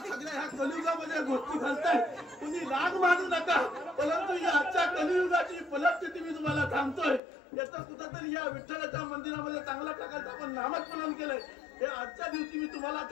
सगळ्या ह्या कलियुगामध्ये गोष्टी घालताय. तुम्ही राग मानू नका, परंतु या आजच्या कलियुगाची परिस्थिती मी तुम्हाला सांगतोय. याचं कुठंतरी या विठ्ठलाच्या मंदिरामध्ये चांगल्या प्रकारचं आपण नामस्मरण केलंय. हे आजच्या दिवशी मी तुम्हाला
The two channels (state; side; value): drops out; right; at 7.2 s